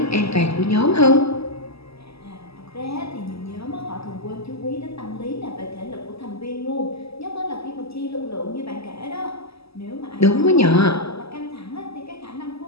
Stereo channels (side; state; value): right; late; 0.78 ms